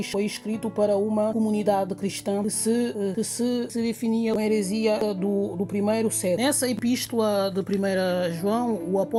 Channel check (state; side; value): identical; both; correlation 1.00